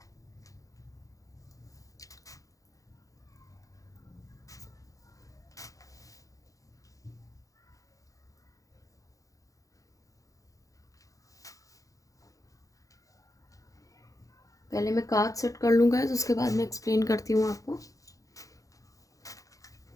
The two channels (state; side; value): late; right; 0.16 ms